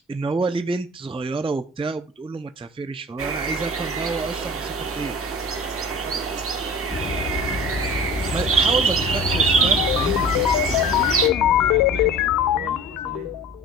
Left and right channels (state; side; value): normal; both; correlation 0.39